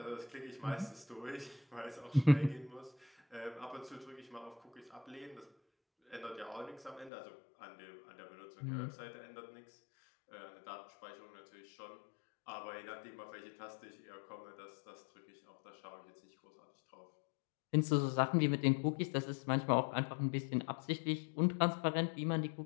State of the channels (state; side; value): drops out; right; at 7.1 s